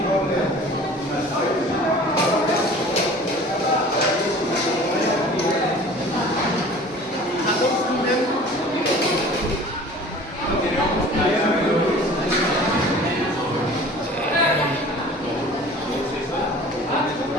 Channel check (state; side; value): normal; both; correlation 0.44